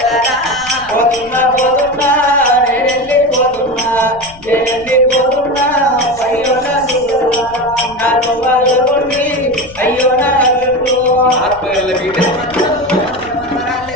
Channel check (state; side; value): noise; left; rumble, 22 dB below the sound